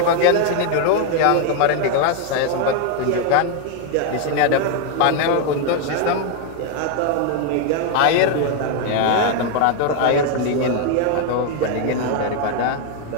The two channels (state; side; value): different; both; correlation 0.01